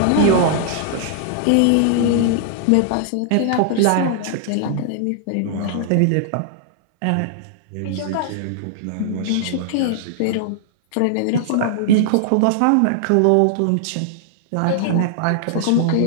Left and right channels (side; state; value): both; different; correlation -0.01